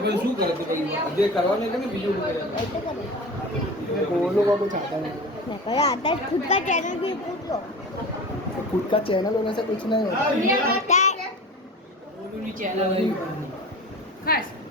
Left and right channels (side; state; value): both; normal; correlation 0.34